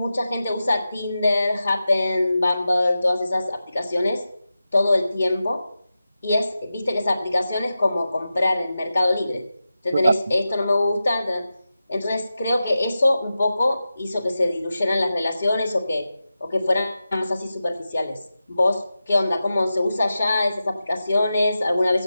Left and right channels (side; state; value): both; inverted; correlation -0.92